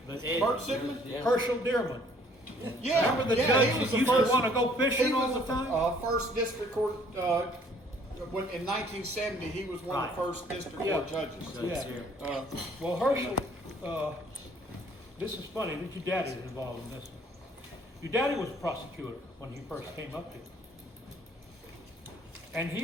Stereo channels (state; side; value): normal; both; correlation 0.59